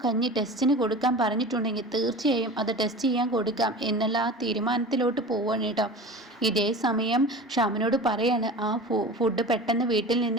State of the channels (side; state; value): both; normal; correlation 0.35